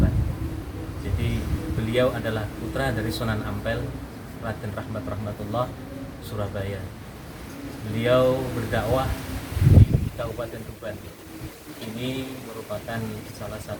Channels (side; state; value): both; identical; correlation 1.00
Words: Jadi beliau adalah putra dari Sunan Ampel, Raden Rahmat Rahmatullah, Surabaya. Beliau berdakwah di Kabupaten Tuban. Ini merupakan salah